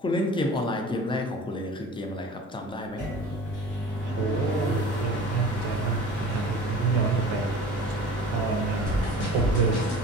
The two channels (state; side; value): normal; both; correlation 0.41